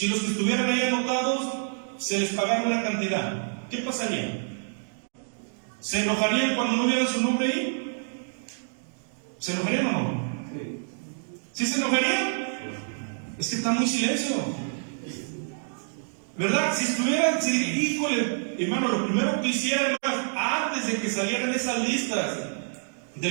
los que estuvieran ahí anotados se les pagara una cantidad? ¿Qué pasaría? ¿Se enojarían cuando no vieran su nombre ahí? ¿Se enojarían o no? ¿Sí se enojarían? Es que está muy silencio, ¿verdad? Si estuvieran, híjole, hermano, lo primero que hicieran, antes de que salieran esas listas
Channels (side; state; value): left; silent; digital silence